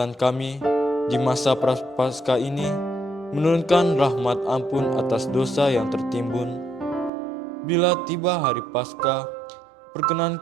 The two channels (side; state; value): left; drops out; at 7.1 s